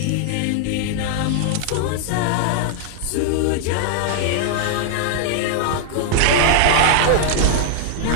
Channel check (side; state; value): both; different; correlation -0.01